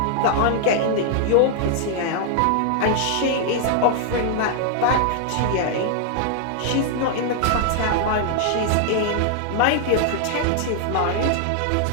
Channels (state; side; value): different; both; correlation -0.01